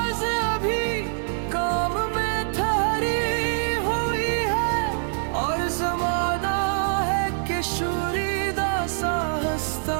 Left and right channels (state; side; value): silent; left; digital silence